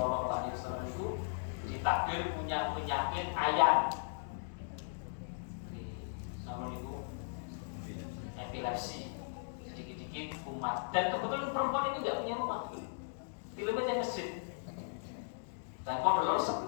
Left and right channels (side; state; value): right; silent; digital silence